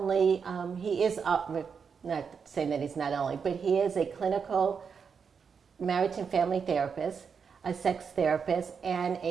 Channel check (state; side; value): quieter; left; 6.2 dB